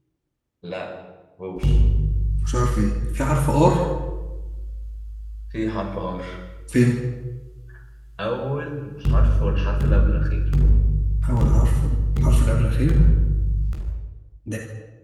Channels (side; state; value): both; identical; correlation 1.00